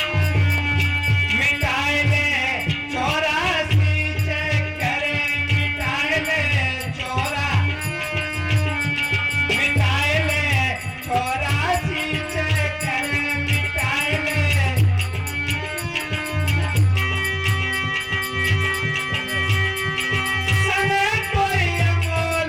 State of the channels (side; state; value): both; identical; correlation 1.00